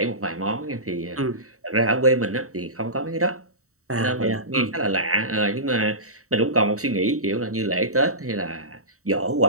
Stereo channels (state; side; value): late; left; 0.64 ms